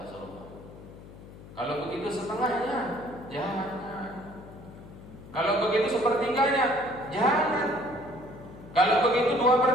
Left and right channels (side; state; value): left; noise; hum, 17 dB below the sound